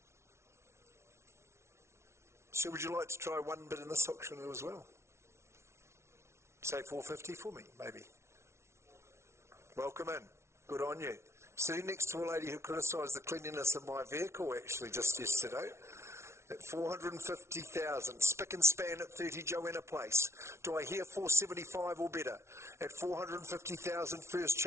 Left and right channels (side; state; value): left; late; 0.13 ms